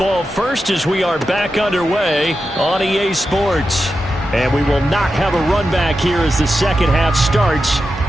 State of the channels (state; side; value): normal; both; correlation 0.90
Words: first as we are back underway on EA Sports. And we will not have a run back here as the second half starts